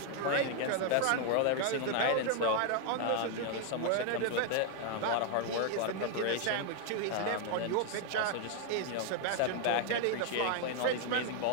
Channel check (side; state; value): both; different; correlation 0.00